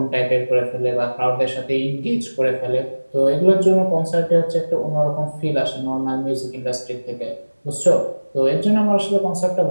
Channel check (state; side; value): inverted; both; correlation -1.00